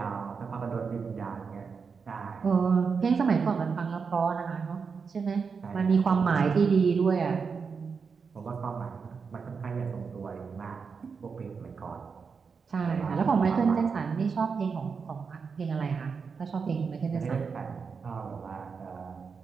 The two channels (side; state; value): left; quieter; 5.5 dB